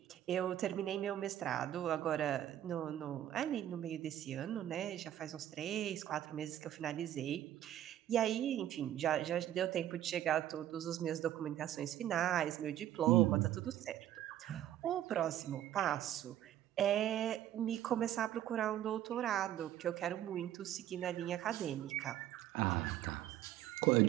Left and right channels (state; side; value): quieter; left; 12.0 dB